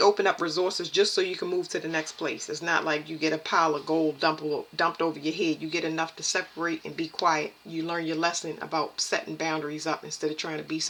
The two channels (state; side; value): identical; both; correlation 1.00